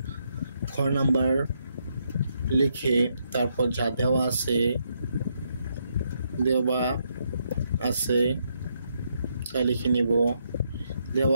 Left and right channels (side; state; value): both; inverted; correlation -0.77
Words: খ নাম্বার লিখে তারপর যা দেওয়া আছে তা লিখে নিব।